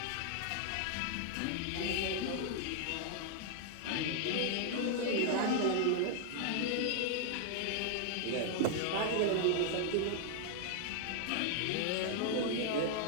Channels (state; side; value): different; both; correlation 0.00